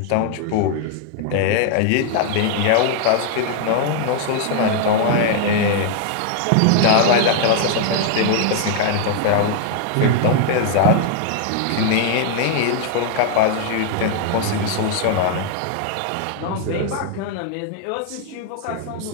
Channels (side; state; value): both; different; correlation 0.00